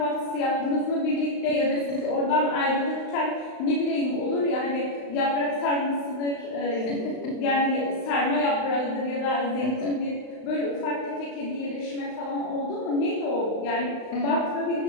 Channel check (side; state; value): right; late; 35 ms